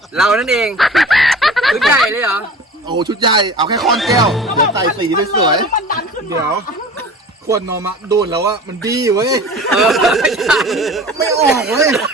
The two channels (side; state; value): both; normal; correlation 0.40